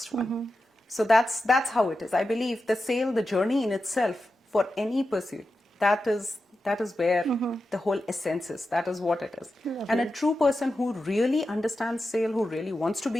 one. So that's how it is. I believe the journey in itself for any pursuit, that is where the whole essence is. That is what it is. Lovely. And a true person who really understands sale, who really wants to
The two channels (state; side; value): normal; both; correlation 0.91